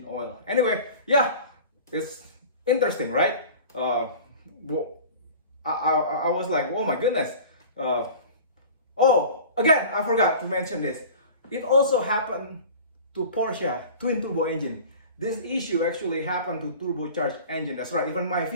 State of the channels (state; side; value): inverted; both; correlation -0.40